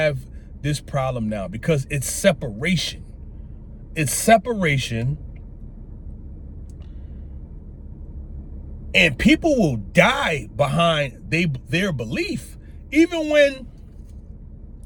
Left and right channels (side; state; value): both; identical; correlation 1.00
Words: this problem now, because it's separation. It's separation. And people will die behind their belief. Even when